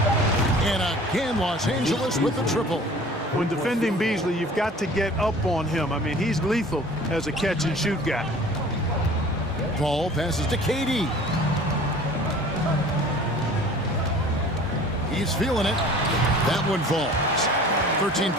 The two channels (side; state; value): both; normal; correlation 0.46